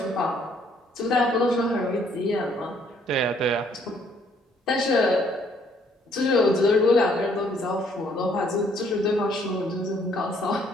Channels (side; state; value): both; normal; correlation 0.65